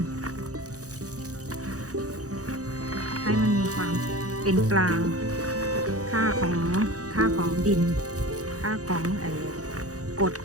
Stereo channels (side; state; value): left; late; 0.66 ms